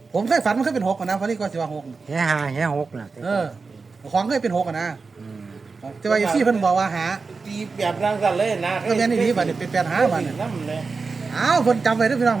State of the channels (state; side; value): quieter; left; 4.5 dB